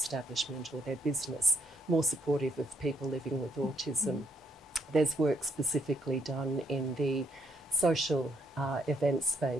or their business more supportive of people living with autism. There's work specifically done in the social event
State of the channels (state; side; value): normal; both; correlation 0.73